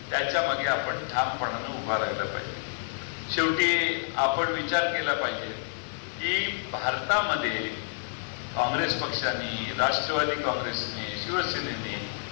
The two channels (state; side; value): silent; right; 59 dB below the other